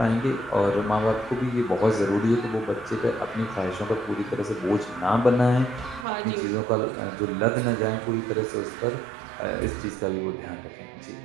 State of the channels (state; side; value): drops out; left; at 6.1 s